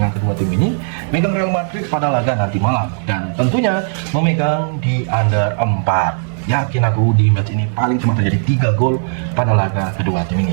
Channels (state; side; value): silent; left; 67 dB below the other